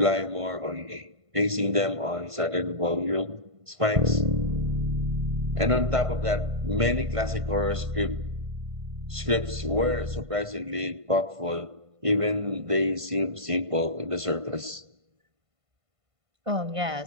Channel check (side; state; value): left; late; 1.5 ms